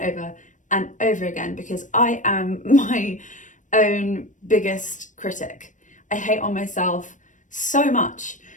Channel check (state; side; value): late; right; 0.37 ms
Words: and over again because I am my own biggest critic. I hate on myself so much,